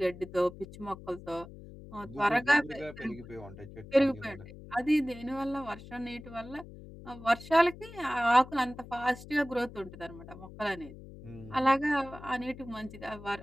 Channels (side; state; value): left; noise; hum, 16 dB below the sound